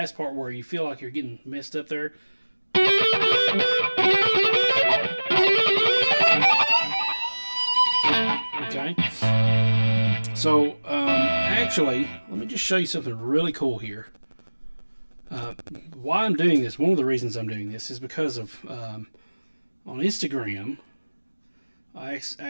part where you feel like you're getting messed up there. Okay. So, actually, let me just show you something really cool here. Why I'm doing this, one of the reasons I'm doing this is because of, on Instagram, I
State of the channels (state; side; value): inverted; both; correlation -1.00